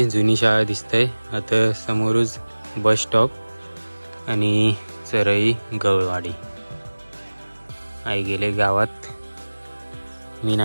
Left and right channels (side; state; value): both; inverted; correlation -1.00